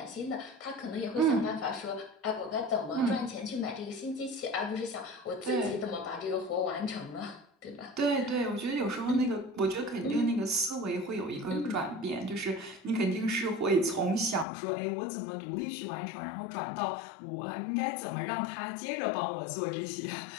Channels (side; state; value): right; drops out; at 14.5 s